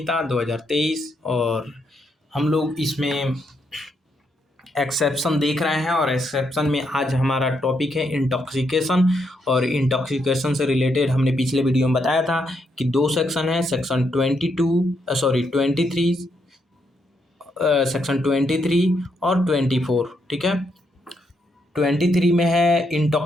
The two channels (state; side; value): normal; both; correlation 0.78